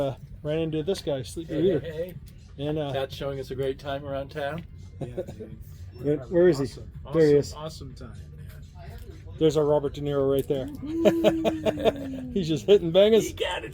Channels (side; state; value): both; identical; correlation 1.00